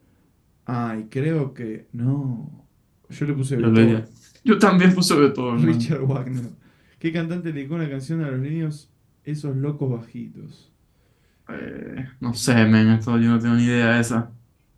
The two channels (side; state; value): both; identical; correlation 1.00